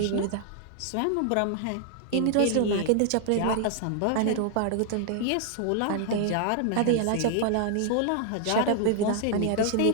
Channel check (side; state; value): both; different; correlation 0.00